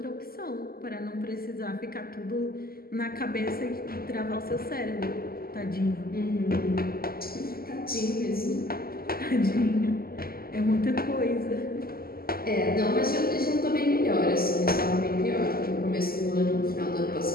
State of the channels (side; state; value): right; late; 0.43 ms